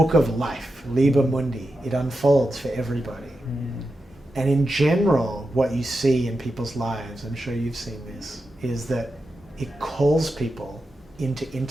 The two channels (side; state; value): both; normal; correlation 0.89